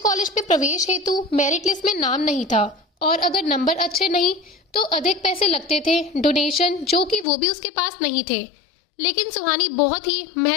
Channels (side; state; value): right; drops out; at 7.2 s